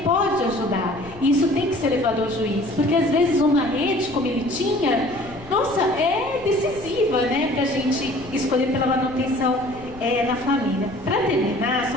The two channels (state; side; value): noise; left; rumble, 19 dB below the sound